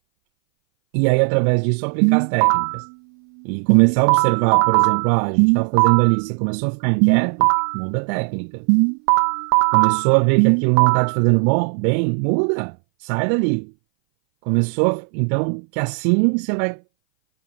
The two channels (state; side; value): silent; left; 61 dB below the other